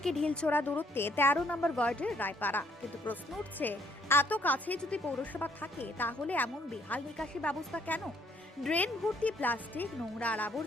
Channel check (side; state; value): both; normal; correlation 0.66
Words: ঢিলছোড়া দূরত্বে 13 নম্বর ওয়ার্ডের রায়পাড়া। কিন্তু প্রশ্ন উঠছে, এত কাছে যদি পৌরসভা থাকে তাহলে এমন বেহাল নিকাশি ব্যবস্থা কেন? ড্রেন ভর্তি প্লাস্টিক, নোংরা আর